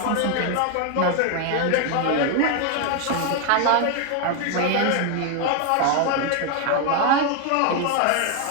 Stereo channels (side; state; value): both; different; correlation 0.01